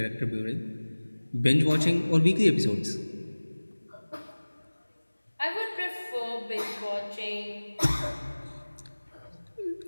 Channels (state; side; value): inverted; both; correlation -1.00